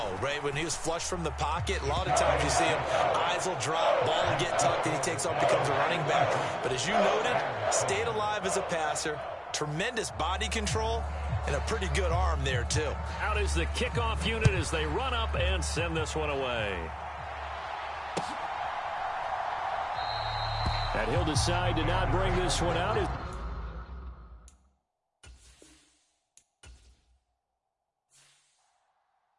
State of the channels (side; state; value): both; identical; correlation 1.00